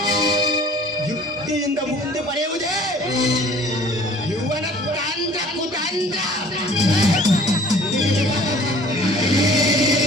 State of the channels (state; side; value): normal; both; correlation 0.51